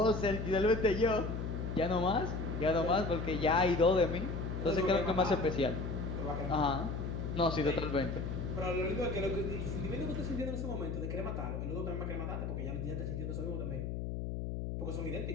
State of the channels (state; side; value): noise; left; hum, 4 dB below the sound